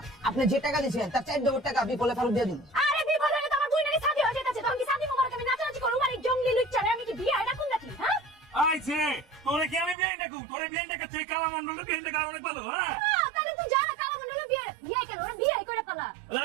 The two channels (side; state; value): left; drops out; at 10.0 s